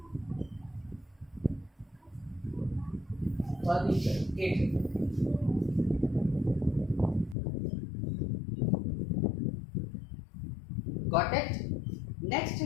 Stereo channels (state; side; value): drops out; right; at 7.4 s